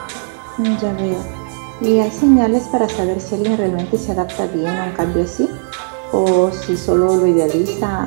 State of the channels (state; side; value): silent; left; digital silence